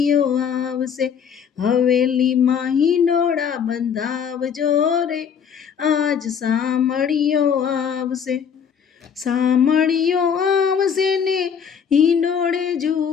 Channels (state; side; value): quieter; right; 7.4 dB